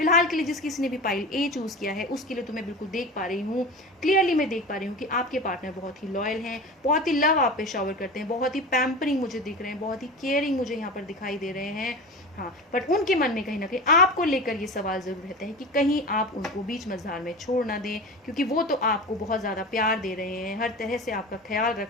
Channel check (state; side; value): normal; both; correlation 0.30